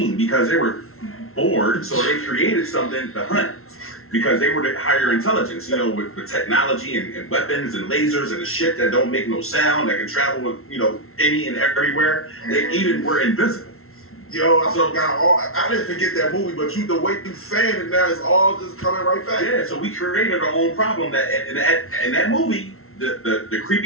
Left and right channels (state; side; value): late; right; 0.62 ms